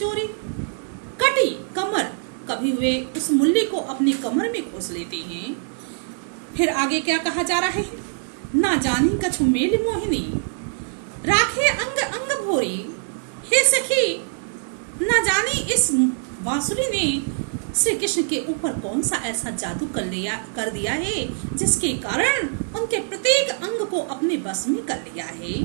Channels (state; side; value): silent; left; digital silence